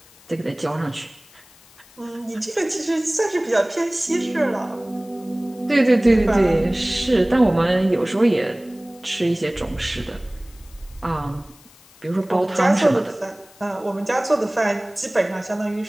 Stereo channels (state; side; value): noise; left; hiss, 26 dB below the sound